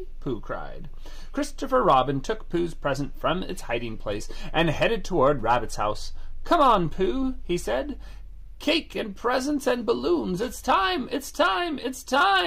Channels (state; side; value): identical; both; correlation 1.00